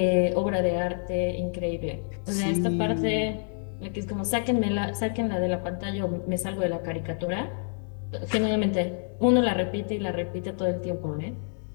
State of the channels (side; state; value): right; silent; 60 dB below the other